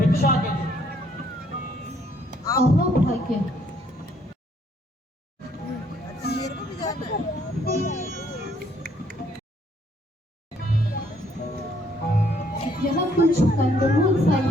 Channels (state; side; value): normal; both; correlation 0.66